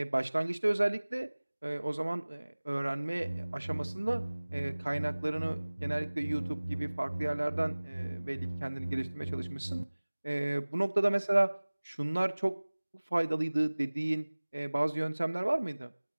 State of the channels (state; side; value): inverted; both; correlation -1.00